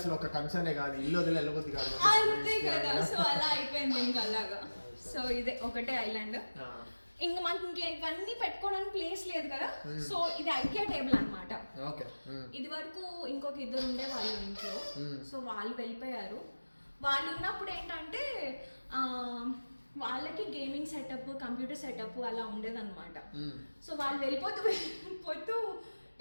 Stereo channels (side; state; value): both; inverted; correlation -1.00